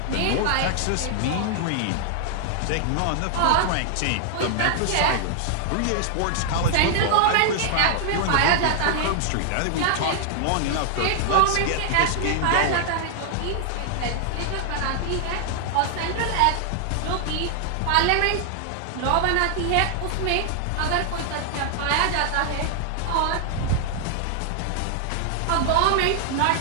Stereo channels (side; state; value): both; different; correlation 0.00